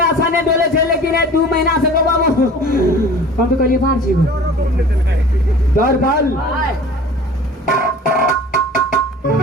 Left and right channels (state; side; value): normal; both; correlation 0.44